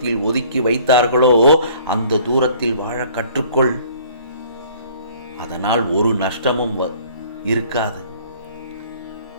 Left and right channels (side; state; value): both; inverted; correlation -0.54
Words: ஒதுக்கி வைத்தார்களோ அந்த தூரத்தில் வாழ கற்றுக்கொள். அதனால் ஒரு நஷ்டமும் இருக்காது.